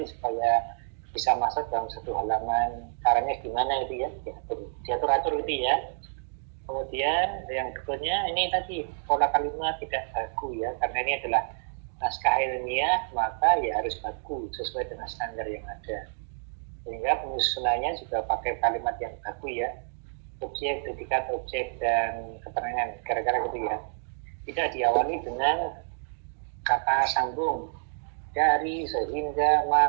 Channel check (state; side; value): silent; left; digital silence